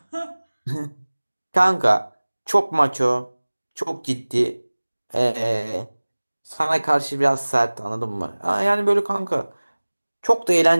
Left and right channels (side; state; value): both; inverted; correlation -1.00